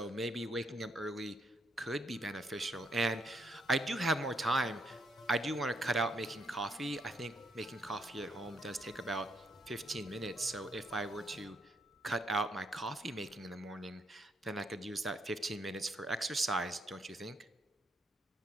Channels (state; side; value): normal; both; correlation 0.74